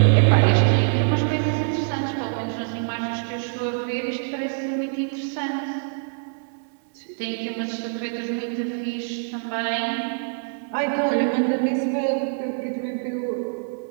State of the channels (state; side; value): silent; left; digital silence